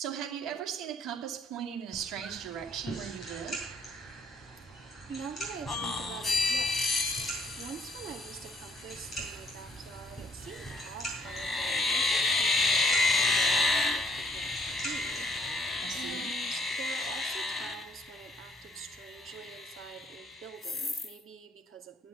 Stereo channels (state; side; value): normal; both; correlation 0.66